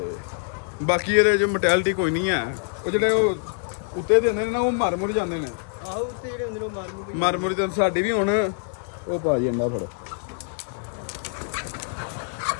ਬਾਕੀ ਇਹਦੇ ਜੋ ਮੋਰਟੈਲਿਟੀ ਕੋਈ ਨਹੀਂ ਹੈ, ਉਹ ਜਿਹੜੇ ਉਹ ਉੱਤੇ ਦਿੰਦੇ ਨੇ ਨਾ, ਉਹ ਮਰ ਮੁਰ ਜਾਂਦੇ ਨੇ। ਆਹੋ ਉੱਤੇ ਜਿਹੜੇ ਹੁੰਦੇ ਨੇ ਉਹ ਮਰ ਮੁਰ ਜਾਂਦੇ। ਸਾਡੀ ਵੀ ਹੁਣ ਉਹ ਭਾਜੀ ਅੰਡਾ ਫੜੋ,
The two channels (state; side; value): silent; right; 62 dB below the other